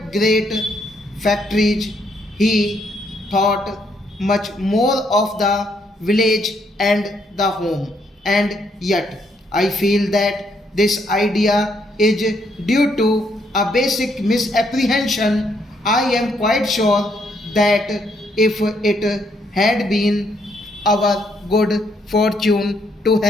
great factories. He thought much more of the village and the home. And yet, I feel that this idea is due to a basic misapprehension. I am quite sure that if it had been our good fortune to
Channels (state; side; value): normal; both; correlation 0.73